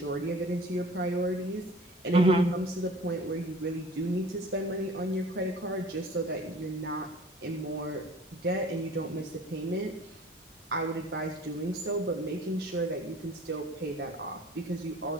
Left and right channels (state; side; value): normal; both; correlation 0.47